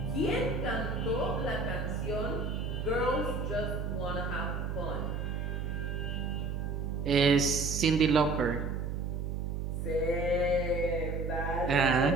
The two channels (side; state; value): right; noise; hum, 3 dB below the sound